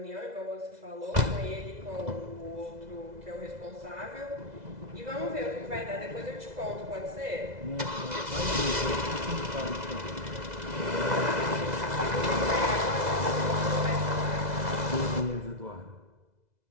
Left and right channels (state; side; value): late; left; 2.0 ms